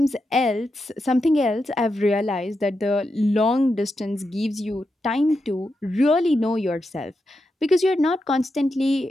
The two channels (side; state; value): both; normal; correlation 0.86